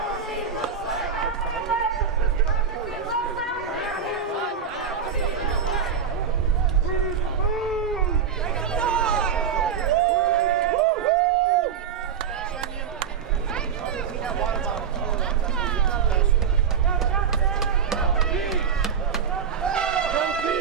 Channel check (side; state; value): left; quieter; 7.1 dB